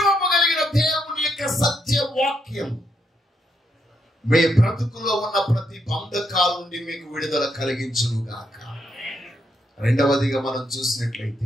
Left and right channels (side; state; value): both; normal; correlation 0.78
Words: కలిగిన దేవుని యొక్క సత్య వాక్యం మీ బ్రతుకులో ఉన్న ప్రతి బంధకాల నుండి మీకు విడుదల కలిగించును గాక. రెండవదిగా మనం